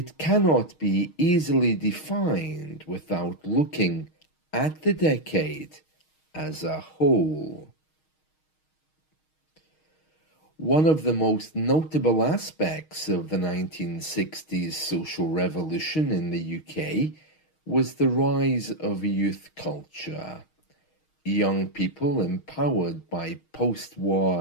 cannot be easily defined without looking at the decade as a whole. One of the most notable aspects of the 1960s social revolution in the UK was the rise of youth culture. Young people empowered by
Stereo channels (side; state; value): right; late; 6.4 ms